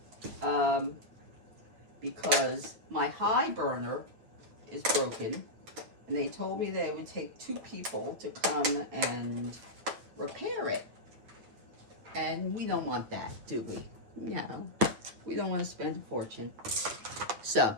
Because my high burner is broken. And they told me that it would take 2 people to come and repair it. And we don't want that, do we? No. We don't want to spend a fortune. So,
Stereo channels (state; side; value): late; left; 9.0 ms